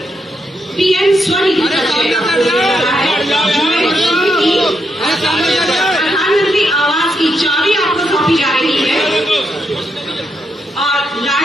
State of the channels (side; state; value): both; normal; correlation 0.81